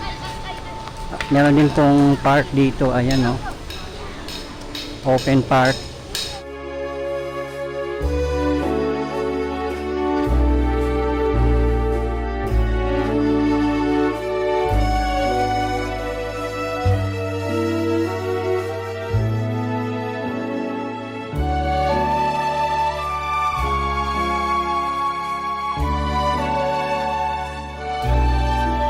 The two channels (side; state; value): both; identical; correlation 1.00